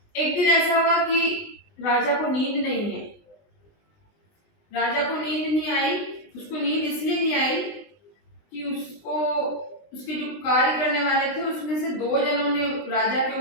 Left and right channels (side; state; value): right; late; 20 ms